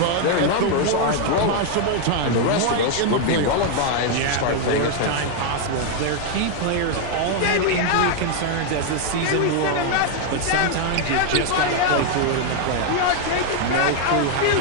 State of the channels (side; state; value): both; different; correlation 0.00